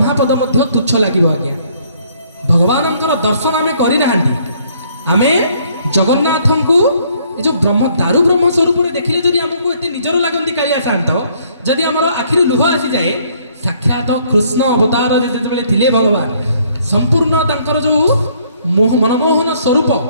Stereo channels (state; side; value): inverted; both; correlation -0.64